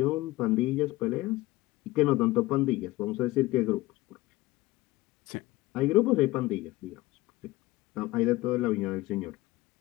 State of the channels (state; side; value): quieter; right; 18.8 dB